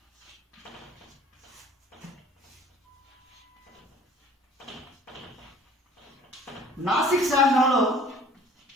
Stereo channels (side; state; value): both; normal; correlation 0.51